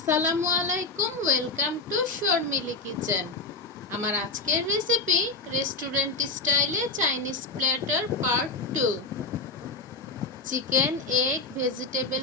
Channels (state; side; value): quieter; right; 3.6 dB